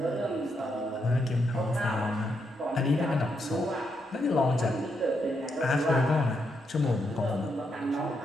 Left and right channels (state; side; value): normal; both; correlation 0.80